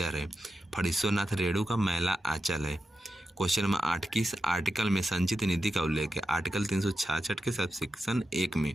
है। फणीश्वरनाथ रेणु का मैला आंचल है। क्वेश्चन नंबर 8, किस आर्टिकल में संचित निधि का उल्लेख है? आर्टिकल 366 के सबसेक्शन 1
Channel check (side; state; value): both; normal; correlation 0.88